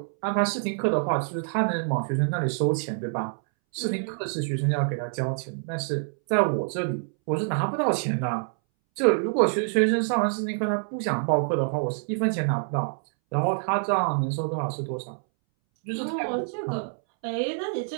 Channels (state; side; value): silent; left; 61 dB below the other